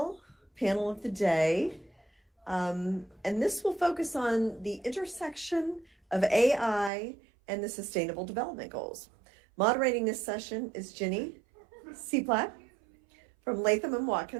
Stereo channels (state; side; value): drops out; left; at 6.9 s